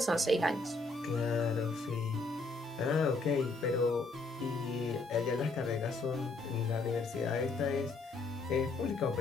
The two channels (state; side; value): quieter; right; 3.4 dB